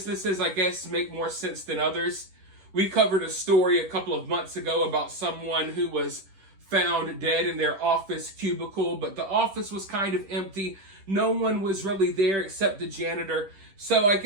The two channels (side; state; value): left; late; 10 ms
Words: I guess, make more sense than others. We covered a story a couple of months ago about someone who was found dead in their office cubicle, but the office was kind of empty. No one was really there except the janitor. So I